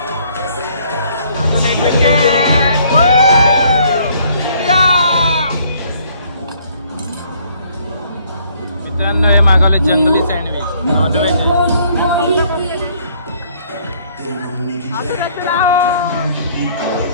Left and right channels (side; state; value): both; inverted; correlation -0.63